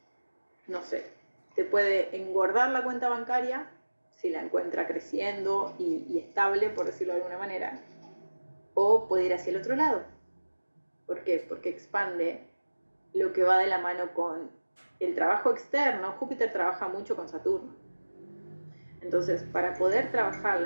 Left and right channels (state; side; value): inverted; both; correlation -1.00